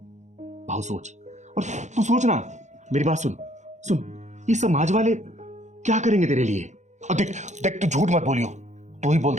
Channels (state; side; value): late; left; 0.34 ms